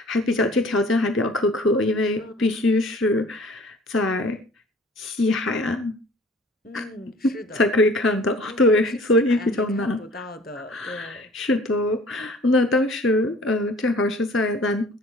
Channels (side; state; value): both; normal; correlation 0.50